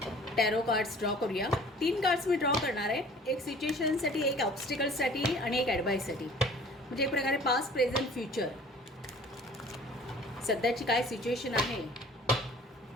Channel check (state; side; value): normal; both; correlation 0.49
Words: टॅरो कार्ड्स ड्रॉ करूया. 3 कार्ड्स मी ड्रॉ करणार आहे, एक सिच्युएशनसाठी, एक ऑब्स्टिकल्ससाठी आणि एक ॲडवाईससाठी. म्हणजे एक प्रकारे पास्ट, प्रेझेंट, फ्युचर, सध्याची काय सिच्युएशन आहे